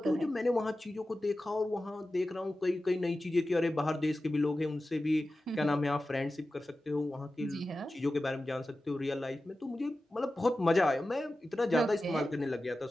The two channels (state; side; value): normal; both; correlation 0.94